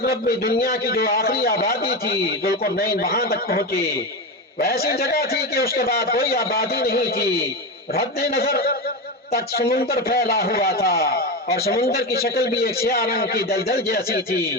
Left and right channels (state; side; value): normal; both; correlation 0.18